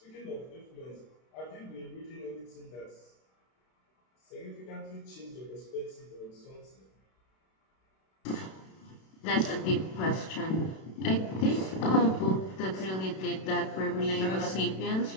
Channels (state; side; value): late; right; 32 ms